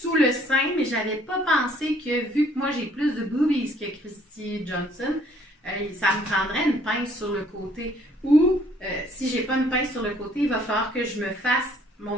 le sein, mais j'avais pas pensé que, vu que moi, j'ai plus de boobies que Christy Johnson, ça me prendrait une pince sur le côté. Ou, si j'ai pas une pince sur le côté, il va falloir que je me fasse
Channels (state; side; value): normal; both; correlation 0.61